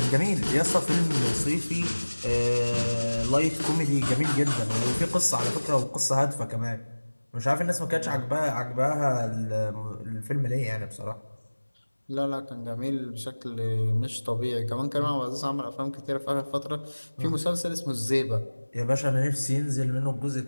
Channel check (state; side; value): inverted; both; correlation -1.00